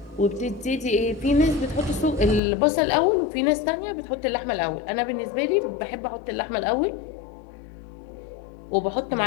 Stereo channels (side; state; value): right; drops out; at 2.4 s